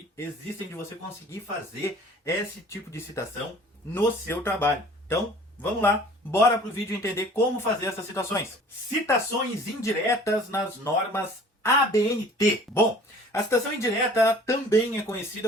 existem de você conseguir fazer esse tipo de citação no seu trabalho. Então, vamos lá, bora pro vídeo entender como fazer essas citações. Citações indiretas nas normas ABNT. Bom, a citação indireta também é conhecida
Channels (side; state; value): both; normal; correlation 0.49